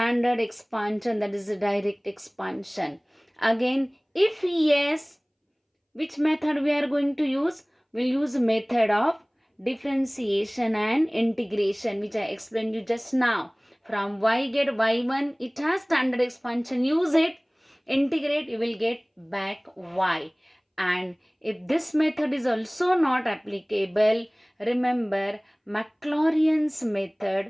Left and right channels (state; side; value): identical; both; correlation 1.00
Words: expansion, that is a direct expansion. Again, if yes, which method we are going to use? We'll use method of differentiation and integration, which I explained you just now. From y get y1, it has standard expansion. Use it, integrate, you will get back y. And if this method is also not applicable, remember Maclaurin's